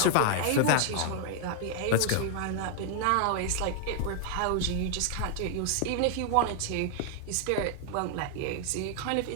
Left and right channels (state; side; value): different; both; correlation 0.00